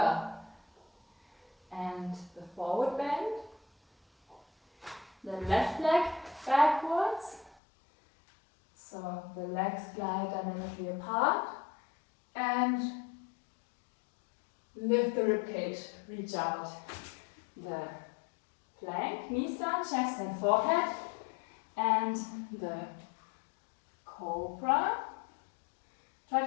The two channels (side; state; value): right; drops out; at 7.6 s